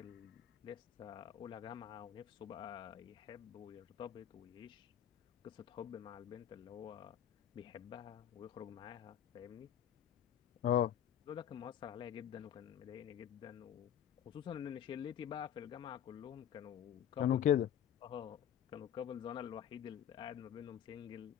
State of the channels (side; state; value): right; quieter; 10.0 dB